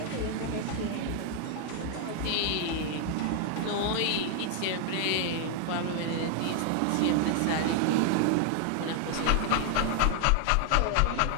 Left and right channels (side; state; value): both; different; correlation 0.00